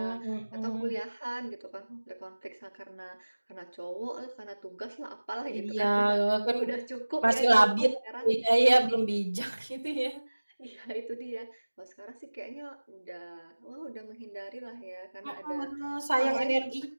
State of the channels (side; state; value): both; inverted; correlation -1.00